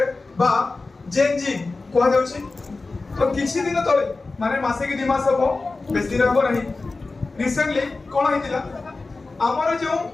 बा जेन जी कह जाउछि। तो किछि दिन तले माने मासे कि 2 मास हबो बेसी दिन हबो नहीं रिसेंटली कोन हितिला हमर जो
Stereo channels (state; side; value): quieter; right; 3.6 dB